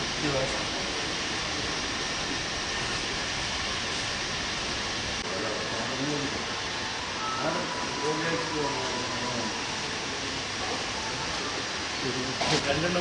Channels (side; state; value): both; identical; correlation 1.00